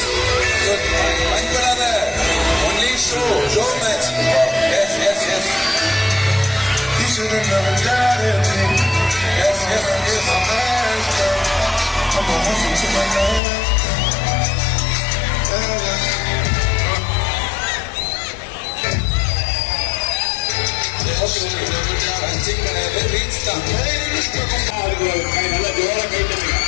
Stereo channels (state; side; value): drops out; right; at 13.4 s